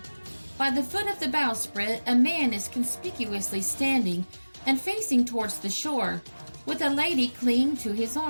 By the foot of the bowsprit, a man is conspicuously standing and facing towards the shore, with a lady clinging to his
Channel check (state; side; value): inverted; both; correlation -1.00